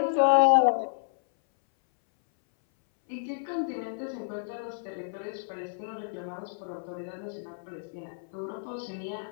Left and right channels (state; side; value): silent; right; 58 dB below the other